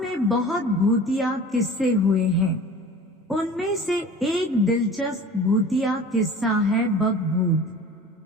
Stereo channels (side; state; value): both; normal; correlation 0.41